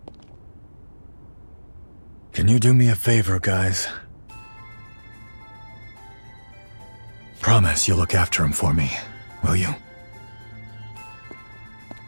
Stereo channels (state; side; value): inverted; both; correlation -1.00